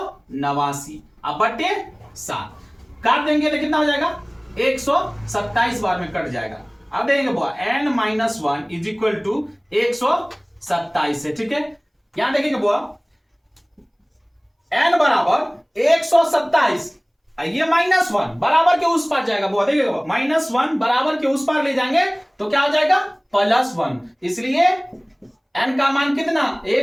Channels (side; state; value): both; identical; correlation 1.00